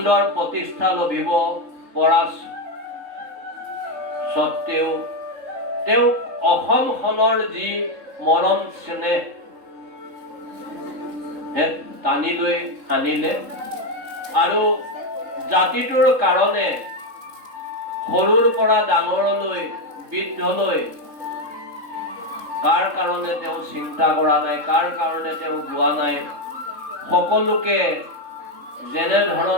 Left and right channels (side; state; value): left; late; 3.7 ms